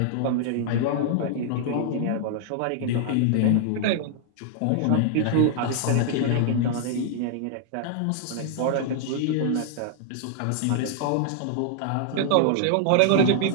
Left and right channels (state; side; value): different; both; correlation 0.00